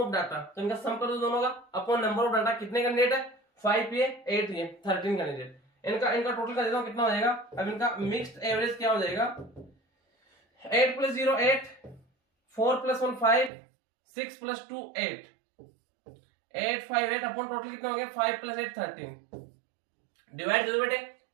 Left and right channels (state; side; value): drops out; left; at 13.5 s